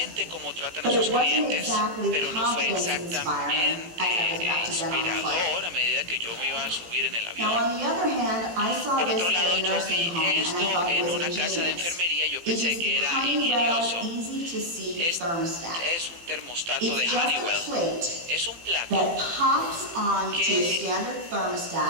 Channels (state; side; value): late; left; 18 ms